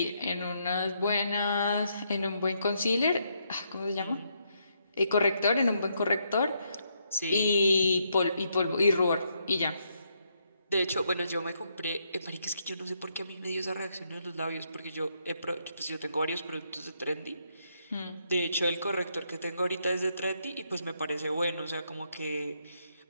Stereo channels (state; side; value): inverted; both; correlation -0.76